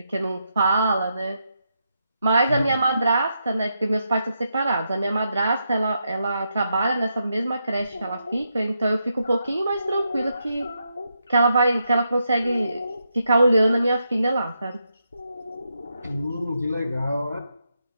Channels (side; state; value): both; inverted; correlation -0.83